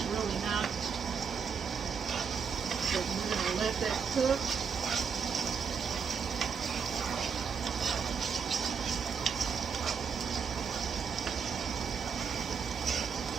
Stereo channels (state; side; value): quieter; left; 6.3 dB